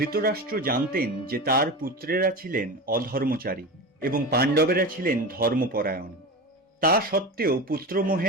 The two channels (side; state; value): both; normal; correlation 0.25